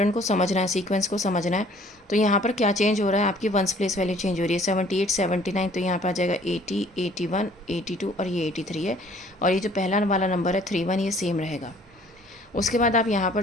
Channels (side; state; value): both; normal; correlation 0.56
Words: को समझना है, सीक्वेंस को समझना है। तो यहाँ पर क्या चेंज हो रहा है, आपकी वंस प्लेस वैल्यू चेंज हो रही है। 78 79 तो यहाँ पर आ जाएगा 80 81 82 और ये 83 है। और ये जो पहला वाला नंबर है 31 ये सेम रहेगा। उसके बाद आप यहाँ